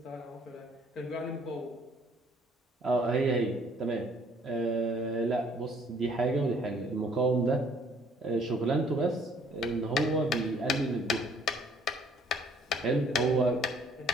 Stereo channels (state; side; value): normal; both; correlation 0.60